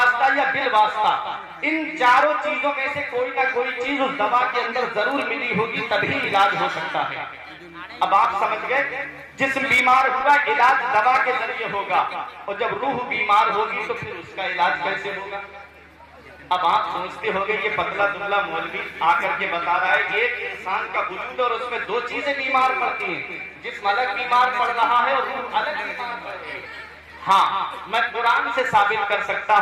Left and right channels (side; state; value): both; identical; correlation 1.00